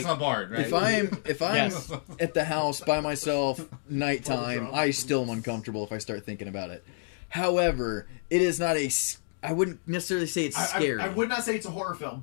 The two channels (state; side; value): silent; right; digital silence